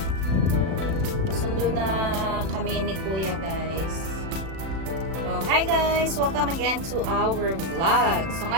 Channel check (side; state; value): left; late; 36 ms